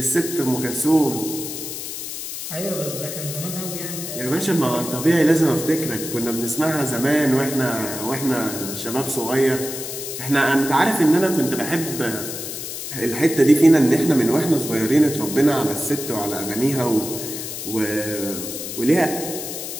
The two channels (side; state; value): left; noise; hiss, 7 dB below the sound